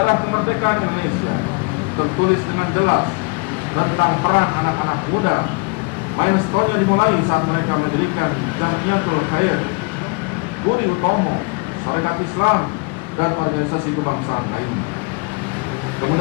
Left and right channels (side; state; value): right; quieter; 32.7 dB